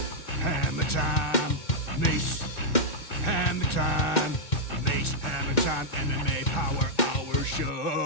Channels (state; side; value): late; right; 2.1 ms